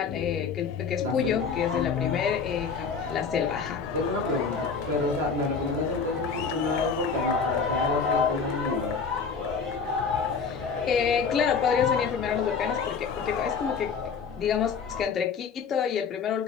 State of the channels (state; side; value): quieter; right; 5.7 dB